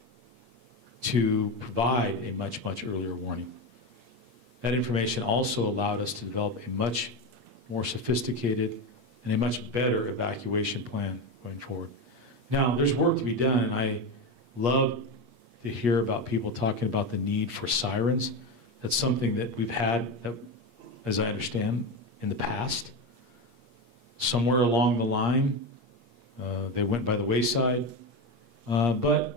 to provide a much, much earlier warning. That information also allowed us to develop a much more sophisticated and a much better evacuation plan going forward. Now, there's work to be done, and I love to hear about people talking about the need for sirens. That's something that we've had, as I understand, in the past. Somewhere along the line, they went by the wayside.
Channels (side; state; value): left; late; 8.5 ms